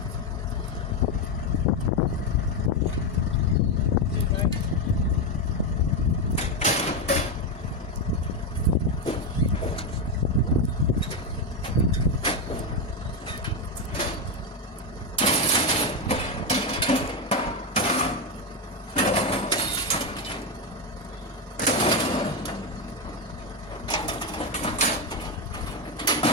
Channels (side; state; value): right; late; 1.2 ms